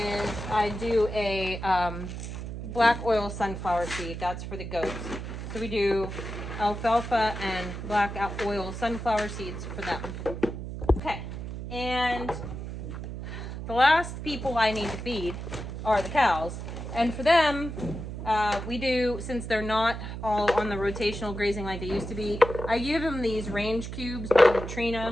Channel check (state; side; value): noise; right; hum, 7 dB below the sound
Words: I do a black oil sunflower seed. That's for the goats. So we do alfalfa and black oil sunflower seeds for them. Okay, and the last people I need to feed are the cows. And for them, we do, since they're not all on the rotational grazing like they used to be, I give them these range cubes by